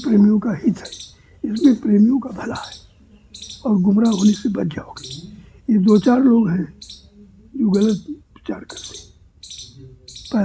का हित है, इसमें प्रेमियों का भला है, और गुमराह होने से बच जाओगे। ये 2-4 लोग हैं जो गलत प्रचार करते हैं।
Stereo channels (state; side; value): identical; both; correlation 1.00